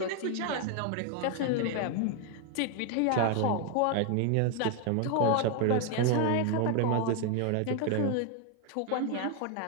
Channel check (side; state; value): both; different; correlation 0.01